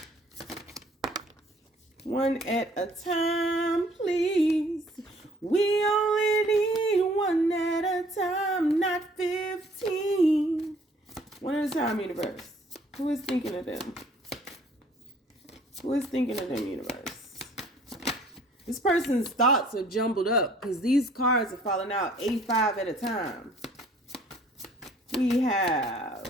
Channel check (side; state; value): both; normal; correlation 0.57